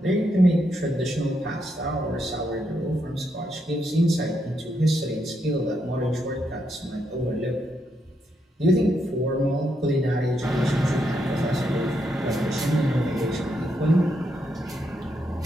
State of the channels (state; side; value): normal; both; correlation 0.79